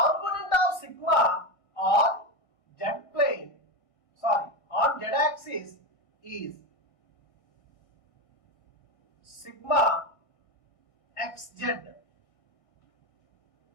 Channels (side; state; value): right; late; 1.6 ms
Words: of sigma on z plane, on z axis is sigma xz.